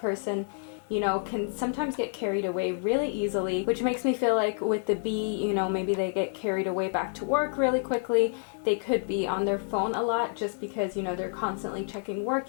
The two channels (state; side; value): silent; right; digital silence